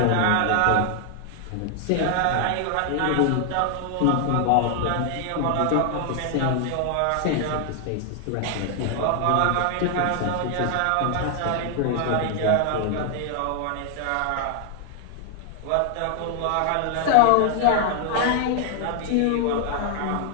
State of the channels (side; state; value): both; different; correlation 0.00